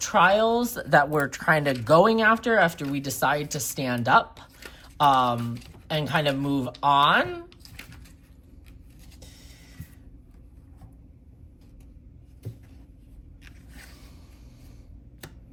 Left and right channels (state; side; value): identical; both; correlation 1.00